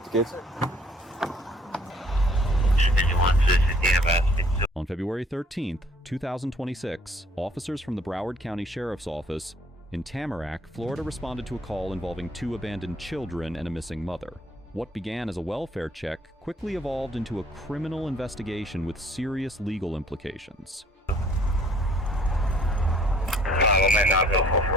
the kids? On On February 13th, 2026, officers from the Broward County Sheriff's Office in Tamarac, Florida responded to a call involving 2 abandoned children and a missing mother. What began as a welfare check quickly evolved into a criminal investigation with serious legal implications.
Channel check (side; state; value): both; normal; correlation 0.59